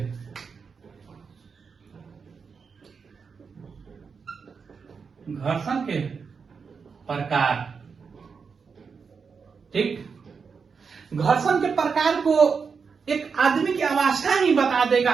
घर्षण के प्रकार, ठीक। घर्षण के प्रकार को एक आदमी की अवस्था ही बता देगा,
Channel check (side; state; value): left; quieter; 5.6 dB